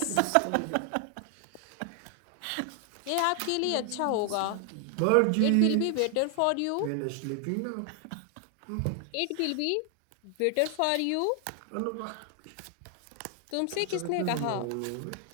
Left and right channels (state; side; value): different; both; correlation 0.00